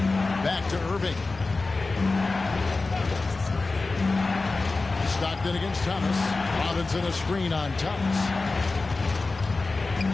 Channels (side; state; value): right; quieter; 3.6 dB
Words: Back to Irving. Stockton against Thomas. Robinson a screen on Thomas.